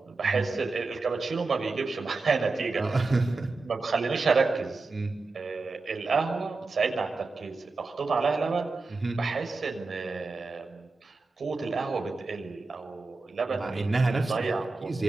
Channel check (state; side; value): quieter; left; 3.8 dB